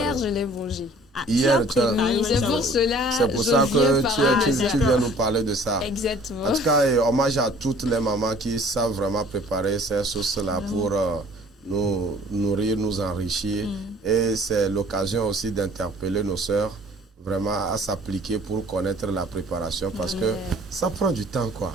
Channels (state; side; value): normal; both; correlation 0.52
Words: je l'ai mangé. Hier, c'est pour cela. C'est pour ça que tu viens nous parler de ça. Exactement. En tout cas, hommage à toutes les mamans qui savent vraiment préparer ces sauces-là pour nous nourrir, nous enrichir. Et c'est l'occasion aussi d'interpeller nos sœurs vraiment à s'appliquer pour connaître la préparation parce que ça prend du temps quoi.